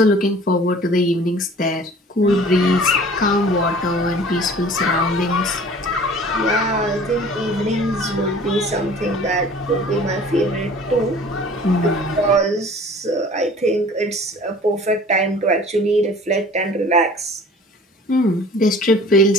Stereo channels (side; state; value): both; normal; correlation 0.47